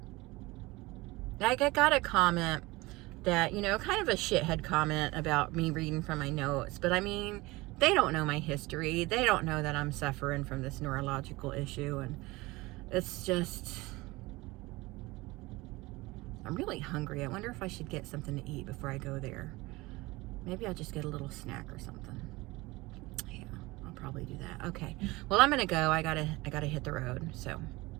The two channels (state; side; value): quieter; left; 21.6 dB